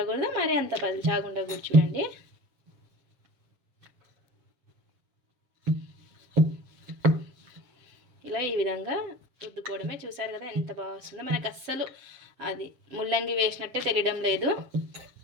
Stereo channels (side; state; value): left; late; 7.5 ms